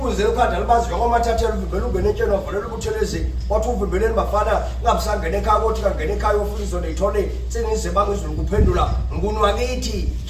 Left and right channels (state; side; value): identical; both; correlation 1.00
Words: ekhanda libazi njengomathathela uvimbele ungene etsheni wavulela ubuthelezi wathi uvimbeleni bafana ungabisangena ekhaya kothi kangena ekhaya ofuna izona yithole senize bangizulu kuphendula nguni wakithi